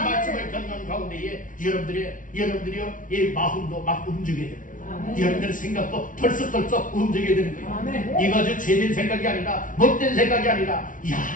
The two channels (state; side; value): late; right; 0.38 ms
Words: 듣는 가운데에 여러분들이요 이 마음도 막 움직여야 되는 거예요. 여러분들의 생각도 털썩털썩 움직여야 되는 거예요. 이거 제된 생각이 아니라 못된 생각이 아니라 야